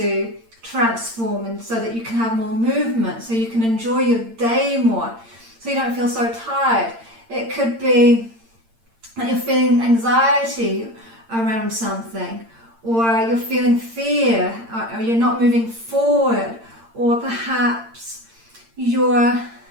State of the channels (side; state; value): left; late; 8.8 ms